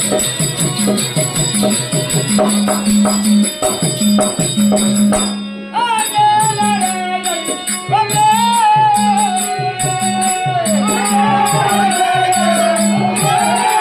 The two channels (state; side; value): identical; both; correlation 1.00